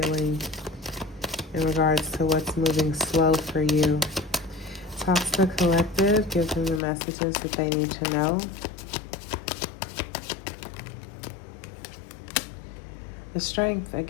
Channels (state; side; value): drops out; right; at 6.8 s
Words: In regards to what's moving slow for you? Talk to the collective. Give them the messages that they need to know. The strength